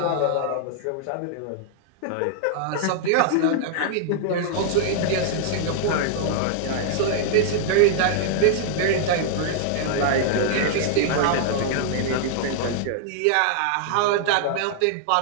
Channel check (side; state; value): both; different; correlation -0.01